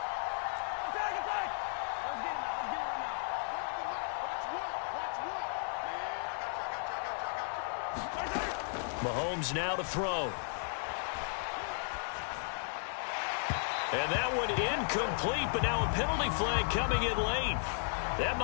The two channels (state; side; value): silent; right; digital silence